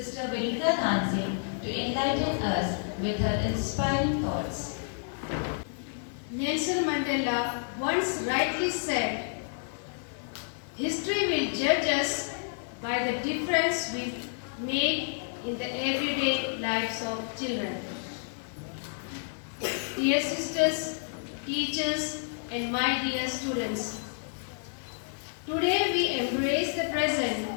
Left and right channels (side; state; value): right; silent; digital silence